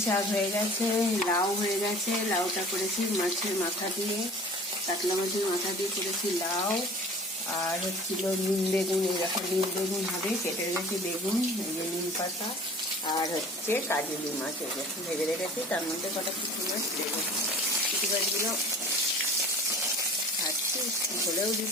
শাক হয়ে গেছে, লাউ হয়ে গেছে। লাউটা করেছি মাছের মাথা দিয়ে, কাতলা মাছের মাথা দিয়ে করেছি লাউ। আর হচ্ছিল নিম বেগুন, এরকম নিম বেগুন হবে, কেটে রেখেছি বেগুন, এই যে নিম পাতা। আর হচ্ছে কাজলি মাছ, এই যে ভেজে রেখেছি, তার মধ্যে কটা পুঁটি মাছ দেবো। পুঁটি মাছগুলো ভাজছি, ঝোলেও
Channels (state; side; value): normal; both; correlation 0.44